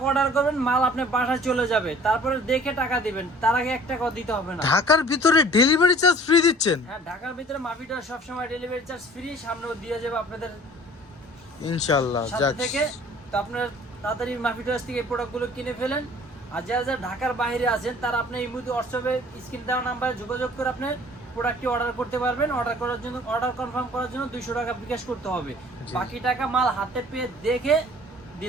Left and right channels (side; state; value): both; normal; correlation 0.50